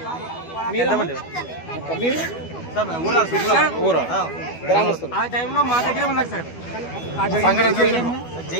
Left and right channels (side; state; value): right; late; 12 ms